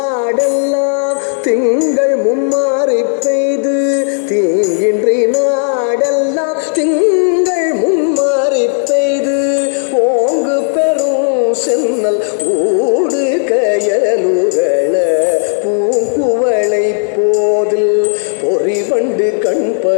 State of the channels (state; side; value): silent; right; digital silence